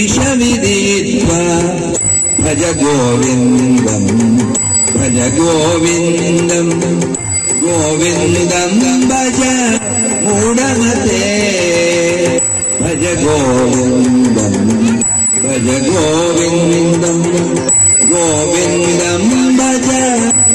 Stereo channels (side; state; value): both; identical; correlation 1.00